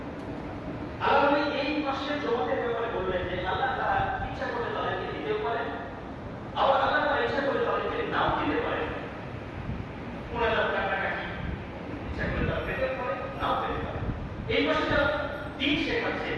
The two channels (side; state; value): both; identical; correlation 1.00